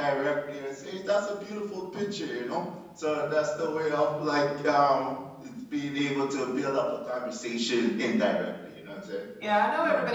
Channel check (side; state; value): both; identical; correlation 1.00